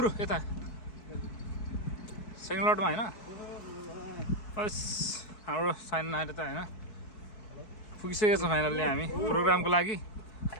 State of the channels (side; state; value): right; late; 4.6 ms